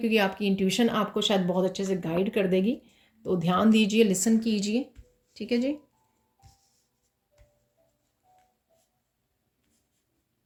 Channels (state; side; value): identical; both; correlation 1.00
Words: आपकी इंट्यूशन आपको शायद बहुत अच्छे से गाइड कर देगी। तो ध्यान दीजिए, लिसन कीजिए, ठीक है जी।